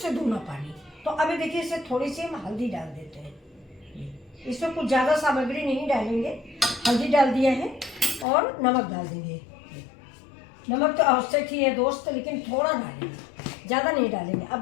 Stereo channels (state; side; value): drops out; right; at 8.2 s